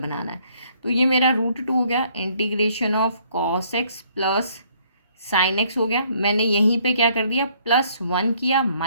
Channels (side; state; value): both; inverted; correlation -0.64